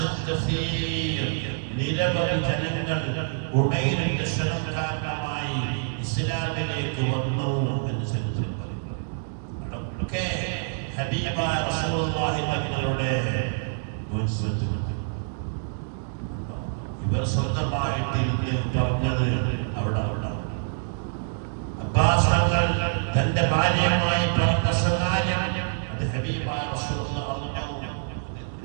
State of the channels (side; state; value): left; silent; digital silence